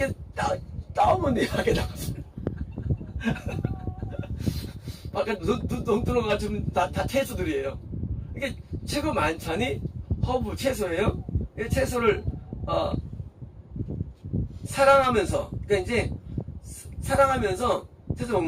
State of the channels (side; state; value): both; identical; correlation 1.00